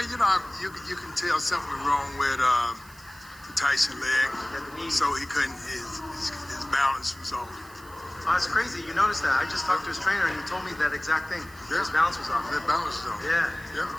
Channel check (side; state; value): right; noise; hiss, 22 dB below the sound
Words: you can tell something was wrong with the Tyson leg, so he couldn't. His balance was off. Oh, that's crazy. You noticed that. I just talked to his trainer and he told me that exact thing. His balance was off. His balance was off. Yeah. Yeah.